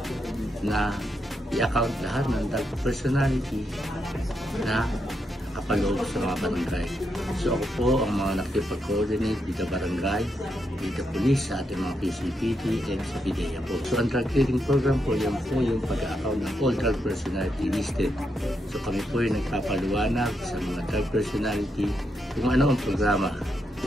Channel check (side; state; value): both; normal; correlation 0.82